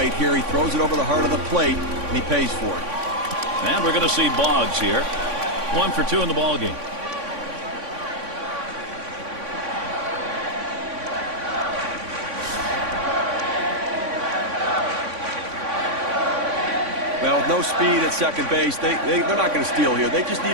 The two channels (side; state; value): left; late; 3.5 ms